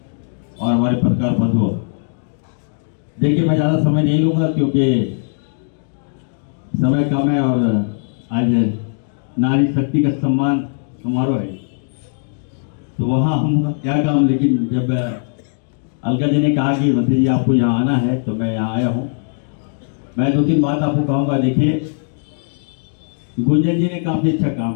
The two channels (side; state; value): right; silent; digital silence